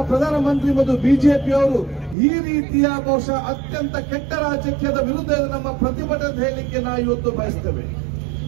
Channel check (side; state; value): left; drops out; at 2.1 s